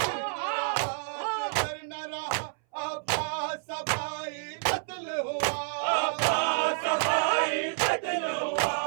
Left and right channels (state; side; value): silent; left; 58 dB below the other